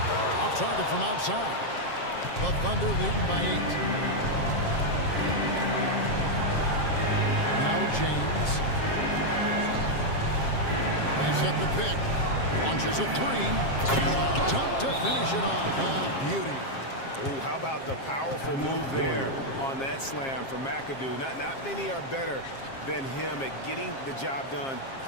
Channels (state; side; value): late; right; 7.5 ms